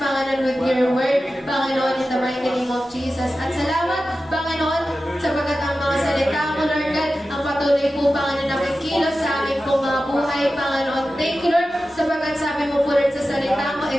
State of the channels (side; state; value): both; normal; correlation 0.94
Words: Panginoon, with your word, Panginoon, in the mighty name of Jesus. At salamat, Panginoon, sapagkat ang mga salita mo, Lord God, ang patuloy po, Panginoon, nakikilos sa aming pong mga buhay, Panginoon. Thank you, Lord, sapagkat sabi mo po, Lord, sa salita mo,